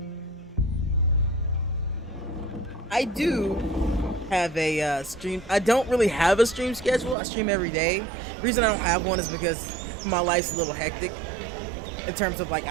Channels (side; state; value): left; drops out; at 7.2 s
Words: I do have a stream. I don't really have a stream schedule. I stream every day. The reason I don't have one is because my life's a little hectic in terms of like